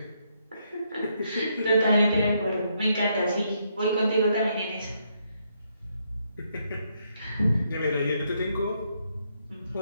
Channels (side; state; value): both; inverted; correlation -0.75